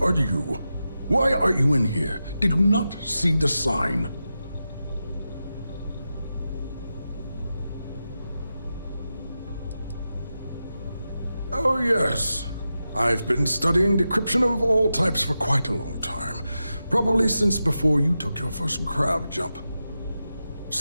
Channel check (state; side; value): inverted; both; correlation -0.91